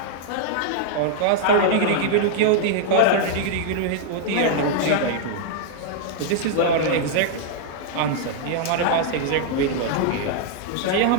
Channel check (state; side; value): different; both; correlation -0.01